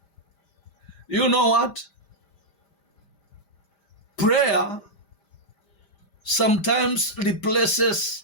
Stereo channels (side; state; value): right; late; 5.0 ms